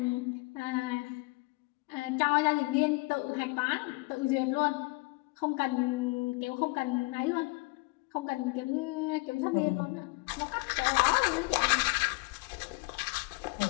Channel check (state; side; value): quieter; right; 26.6 dB